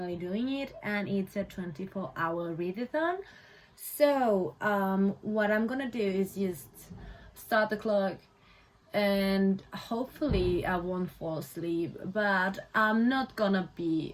doing it, and it's a 24-hour readathon. So what I'm gonna do is just start the clock, and hopefully I won't fall asleep, but I'm not gonna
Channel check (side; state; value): both; identical; correlation 1.00